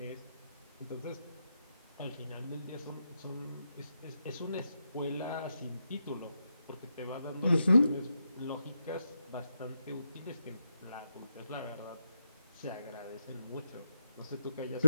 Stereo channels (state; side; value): inverted; both; correlation -0.85